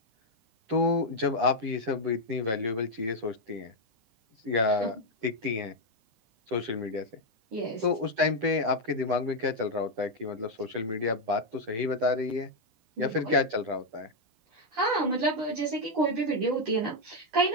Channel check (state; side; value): late; left; 9.9 ms